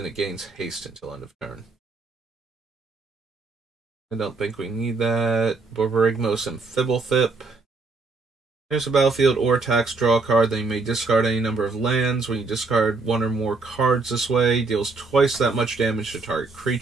it gains haste until end of turn. I don't think we need that. Borborygmos and Fibblethip. Here's a battlefield or attacks, draw a card, then you may discard any number of lands. When you discard 1 or more cards this way, deals twice that much damage to target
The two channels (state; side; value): quieter; left; 3.9 dB